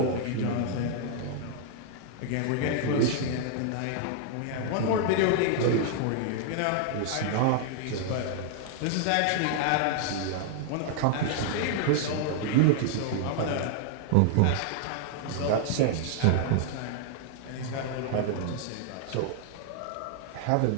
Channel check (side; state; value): both; different; correlation -0.01